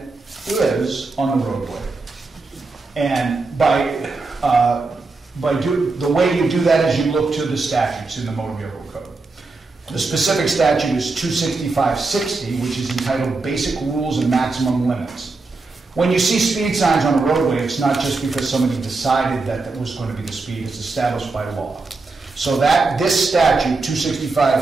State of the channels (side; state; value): left; quieter; 3.8 dB